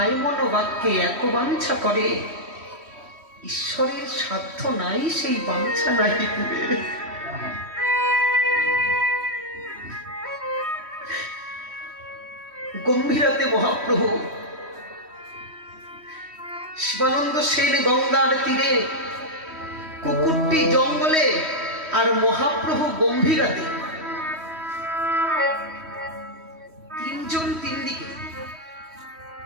মনোবাক্যে এক বাঞ্ছা করে, ঈশ্বরের সাধ্য নাই সেই বাঞ্ছা নাই দিবে। গম্ভীরাতে মহাপ্রভু শিবানন্দ সেন গঙ্গার তীরে, কুকুরটি জঙ্গলে, আর মহাপ্রভু গম্ভীরাতে, তিনজন তিন দিকে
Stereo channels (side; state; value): left; late; 3.1 ms